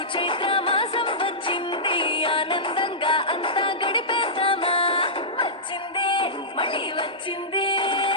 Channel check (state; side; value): normal; both; correlation -0.15